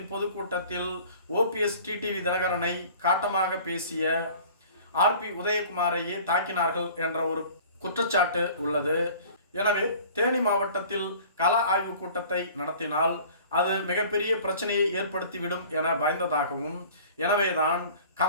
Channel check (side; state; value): both; inverted; correlation -0.47